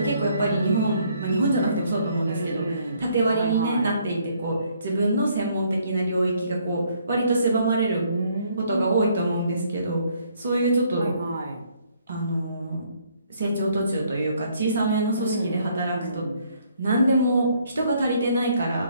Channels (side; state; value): both; inverted; correlation -0.66